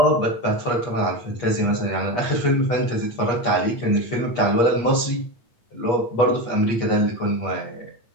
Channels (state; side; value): late; right; 8.4 ms